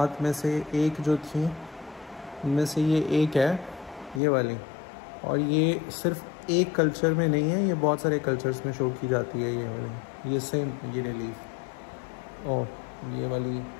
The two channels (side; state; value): right; drops out; at 4.2 s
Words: में से एक जो थी, उनमें से ये एक है, ये वाली। और ये सिर्फ एक कल्चर में नहीं है, ये बहुत सारे कल्चर्स में शो की जाती है ये वाली। ये सेम ये रिलीफ और ये वाली